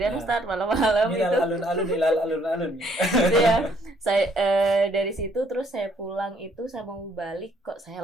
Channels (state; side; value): normal; both; correlation 0.66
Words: Ustadz, malam-malam itu. Alun-alun ilal alun-alun. Ya, saya dari situ terus saya pulang itu, saya mau balik kok saya